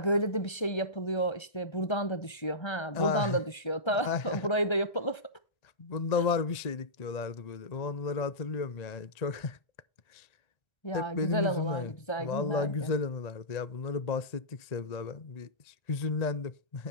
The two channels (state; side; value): late; right; 1.3 ms